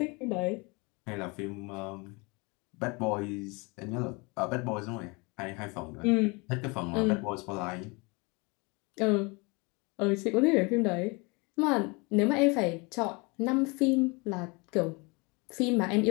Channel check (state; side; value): quieter; right; 28.5 dB